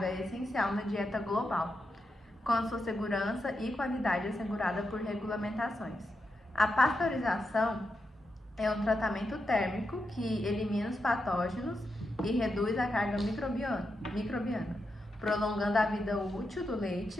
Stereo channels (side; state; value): both; normal; correlation 0.86